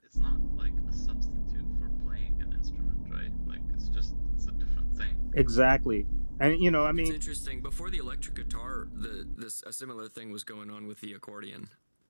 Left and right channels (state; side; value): inverted; both; correlation -1.00